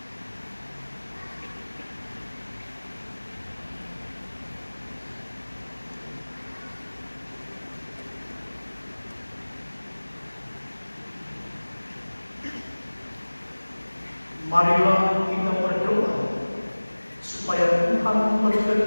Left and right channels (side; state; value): both; inverted; correlation -1.00